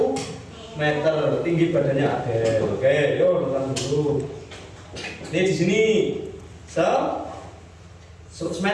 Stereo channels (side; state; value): both; identical; correlation 1.00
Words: meter, tinggi badannya Adel. Oke, yuk datang dulu. Ini di sini 100